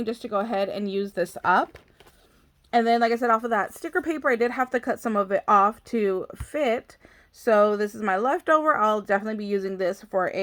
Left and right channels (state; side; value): identical; both; correlation 1.00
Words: just to go ahead and use this up. And then, like I said, off of that sticker paper, I did have to cut some of it off to fit. So this is my leftover. I'll definitely be using this for